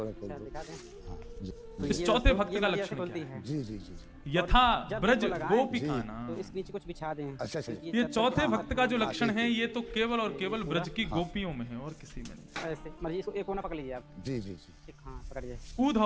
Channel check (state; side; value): identical; both; correlation 1.00